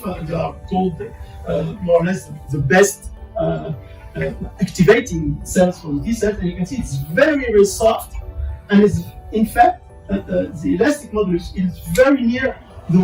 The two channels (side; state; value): both; identical; correlation 1.00